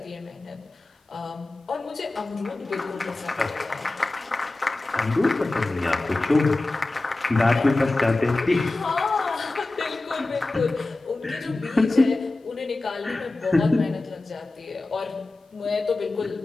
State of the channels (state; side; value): quieter; right; 3.0 dB